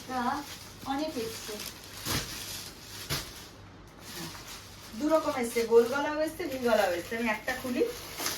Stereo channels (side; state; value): both; identical; correlation 1.00